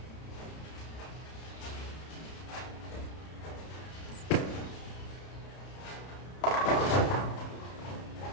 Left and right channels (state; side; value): late; right; 31 ms